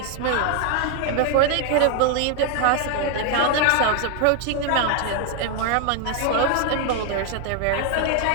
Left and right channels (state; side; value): different; both; correlation 0.00